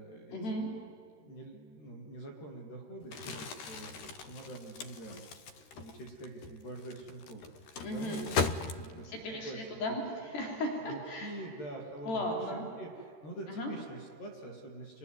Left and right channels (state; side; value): late; right; 13 ms